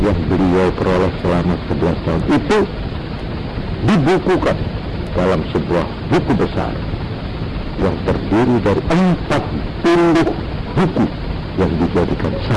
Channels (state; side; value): identical; both; correlation 1.00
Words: yang beliau peroleh selama 11 tahun itu dibukukan dalam sebuah buku besar yang terdiri dari 40 buku yang dijadikan